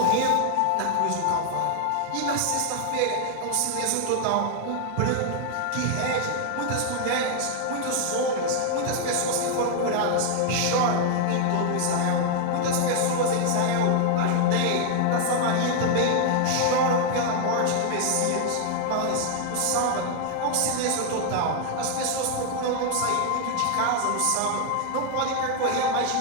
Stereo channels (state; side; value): different; both; correlation 0.00